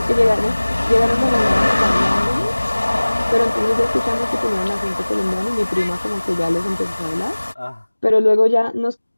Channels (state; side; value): inverted; both; correlation -1.00